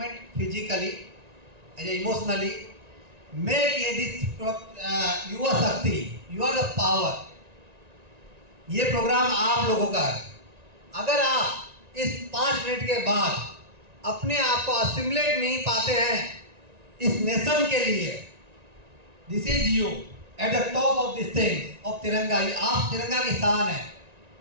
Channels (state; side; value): late; left; 1.9 ms